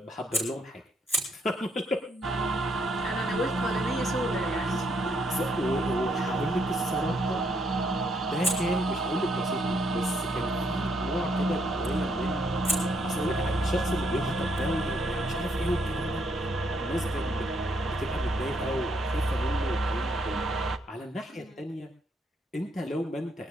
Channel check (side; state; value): both; normal; correlation 0.73